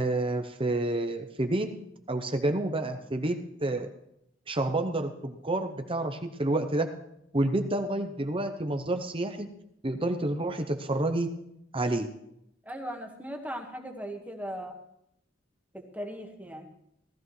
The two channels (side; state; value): both; normal; correlation 0.63